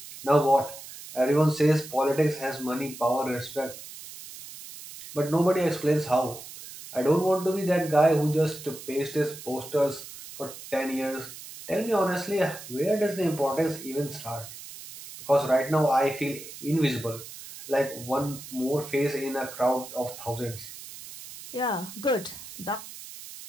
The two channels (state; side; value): noise; right; hiss, 14 dB below the sound